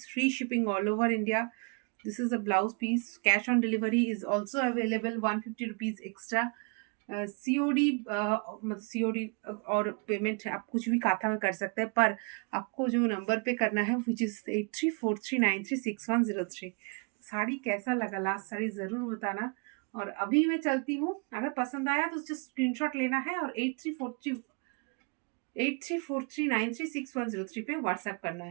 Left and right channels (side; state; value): left; quieter; 35.1 dB